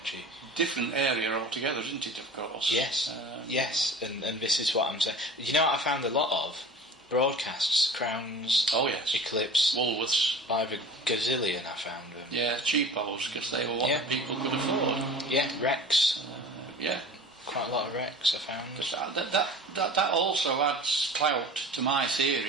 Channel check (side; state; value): both; normal; correlation 0.39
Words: Different area altogether, isn't it, of course? Yes, yes, and this is what I'm saying. You know what I found a lot of? Broadcasts, Crowns, Eclipse, Woolworths. By the gazillion I found them. Yeah, cheapos, because they were what the people could afford. Yeah, Rex. Yeah. Quite a lot of Rex I found. That also adds clout to my